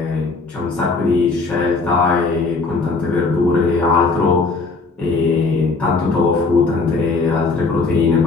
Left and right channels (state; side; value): quieter; right; 4.0 dB